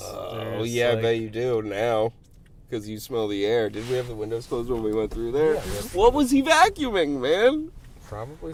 Oh, yeah, I bet you do now. Because you smell the air. Did we have the windows closed when we went through there? Yeah, what was he vacuuming, man?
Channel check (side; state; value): both; identical; correlation 1.00